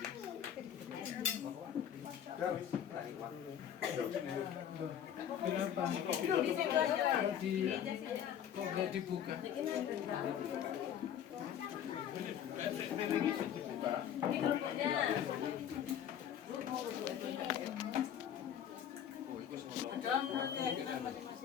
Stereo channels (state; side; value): quieter; right; 9.5 dB